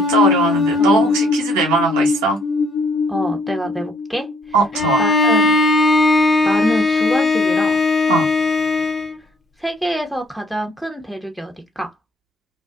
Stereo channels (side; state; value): both; normal; correlation 0.64